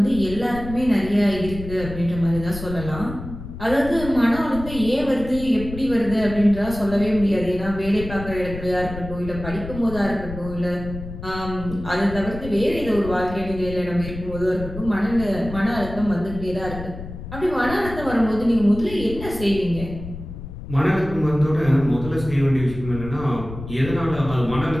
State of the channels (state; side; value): noise; left; rumble, 11 dB below the sound